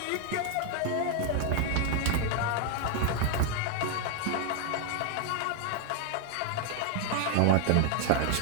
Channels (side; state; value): both; different; correlation 0.00